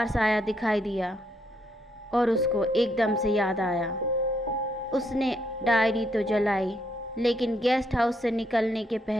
साया दिखाई दिया और उसको एकदम से याद आया। उसने डायरी तो जलाई, लेकिन गेस्ट हाउस से निकलने के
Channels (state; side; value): normal; both; correlation 0.74